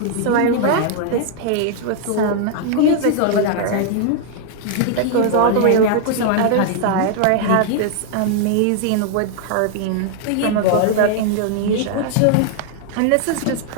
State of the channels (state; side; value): different; both; correlation 0.00